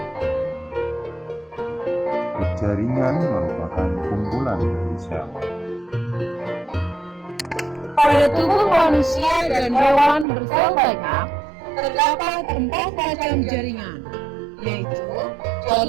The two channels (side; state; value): left; drops out; at 10.2 s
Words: Jaringan merupakan kumpulan dari sel. Pada tubuh manusia dan hewan bersel banyak, terdapat 4 macam jaringan, yaitu